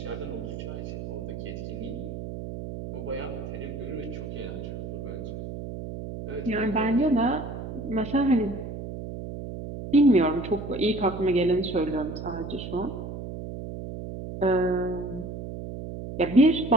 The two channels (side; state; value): right; noise; hum, 8 dB below the sound